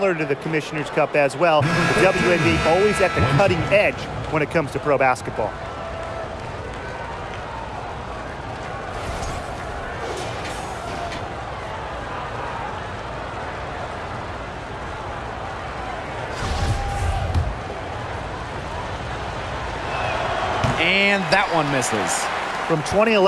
to the Commissioner's Cup as well. The WNBA always at the cutting edge when it comes to pro basketball. And that one misses. From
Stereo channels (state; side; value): identical; both; correlation 1.00